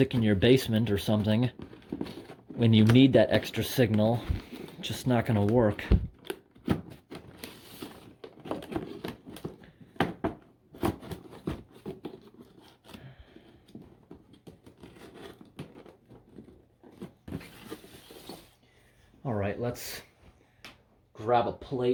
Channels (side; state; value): both; identical; correlation 1.00